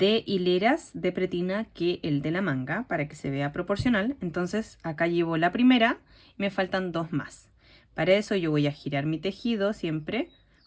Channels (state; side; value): identical; both; correlation 1.00